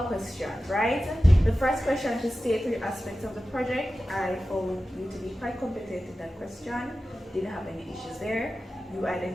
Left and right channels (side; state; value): both; normal; correlation 0.94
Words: questions, right? The first question to state three aspects of the project, I found you to be quite competent in that question. Didn't have any issues there. You